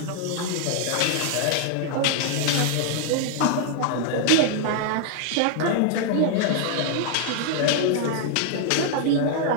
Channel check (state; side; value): different; both; correlation 0.00